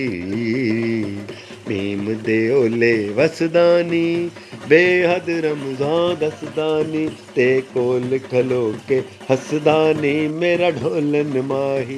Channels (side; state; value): both; identical; correlation 1.00